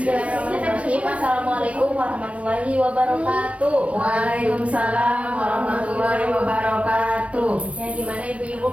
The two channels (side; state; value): left; late; 0.063 ms